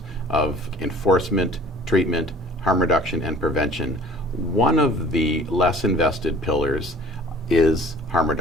of enforcement, treatment, harm reduction, and prevention, one of the less invested pillars is harm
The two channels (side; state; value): both; normal; correlation 0.48